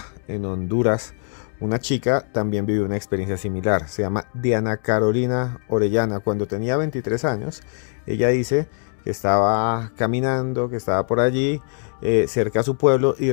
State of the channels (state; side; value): silent; right; 55 dB below the other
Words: en Honduras, una chica también vivió una experiencia similar. Se llama Diana Carolina Orellana. Cuando tenía 23 años, ella dice que estaba caminando, que estaba por allí, cerca a su pueblo, y de